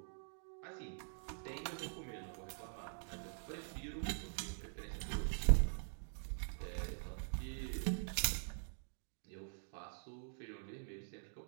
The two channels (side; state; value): left; silent; digital silence